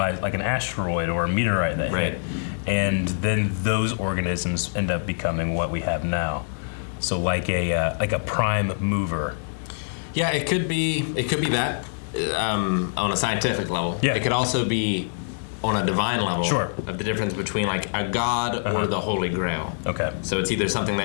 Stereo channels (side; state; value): right; silent; digital silence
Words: like an asteroid or a meteorite that hit. And then those organisms end up becoming what we have now. So like a prime mover. Yeah, it could be that on a scientific level. Yeah. It could also be on a divine level. Sure. Of the difference between like a god or the Holy Grail. Okay. So it's either something